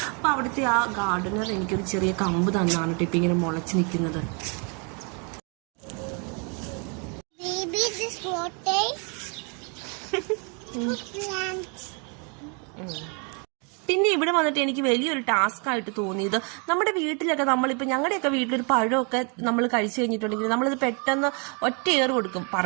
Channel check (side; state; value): left; quieter; 35.7 dB